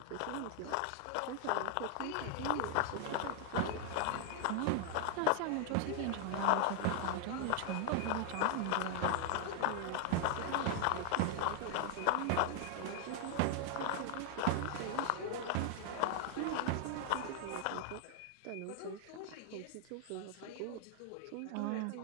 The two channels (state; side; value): different; both; correlation 0.00